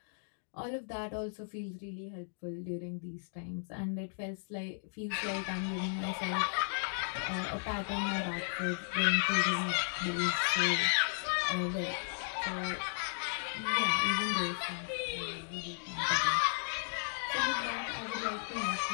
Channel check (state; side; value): silent; right; digital silence